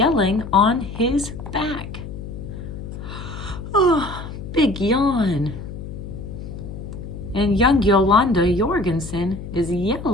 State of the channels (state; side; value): noise; left; hum, 10 dB below the sound